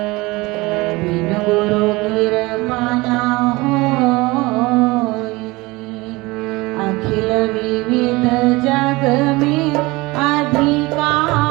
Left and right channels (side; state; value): left; quieter; 22.4 dB